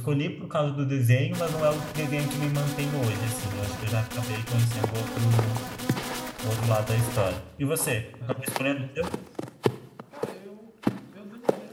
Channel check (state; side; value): identical; both; correlation 1.00